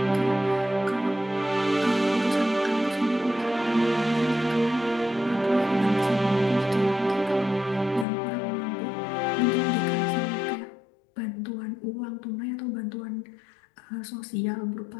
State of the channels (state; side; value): drops out; right; at 8.1 s